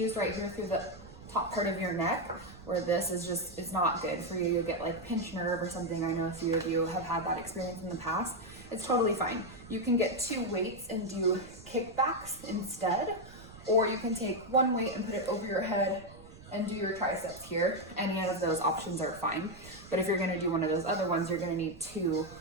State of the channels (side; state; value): right; noise; rumble, 19 dB below the sound